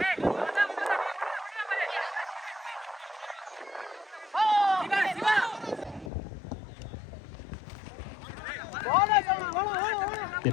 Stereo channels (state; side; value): drops out; right; at 6.1 s